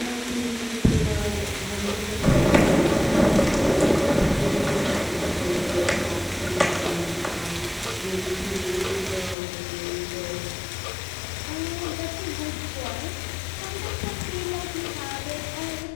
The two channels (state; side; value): drops out; right; at 9.3 s